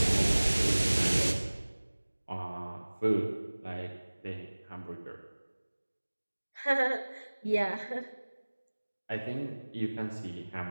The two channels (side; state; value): both; inverted; correlation -1.00